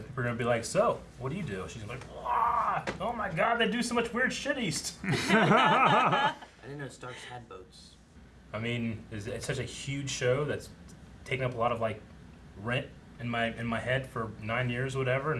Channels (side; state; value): both; identical; correlation 1.00